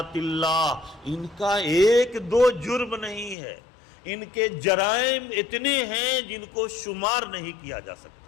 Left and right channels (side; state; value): right; drops out; at 3.4 s